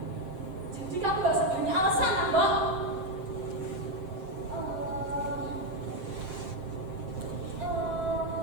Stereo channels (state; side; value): late; left; 7.7 ms